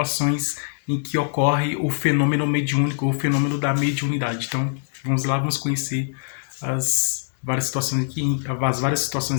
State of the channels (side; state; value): right; silent; digital silence